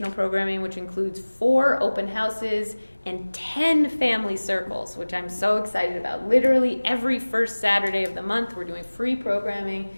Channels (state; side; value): inverted; both; correlation -1.00